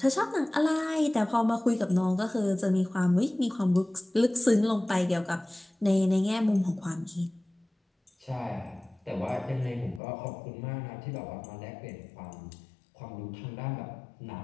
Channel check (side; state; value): right; drops out; at 10.0 s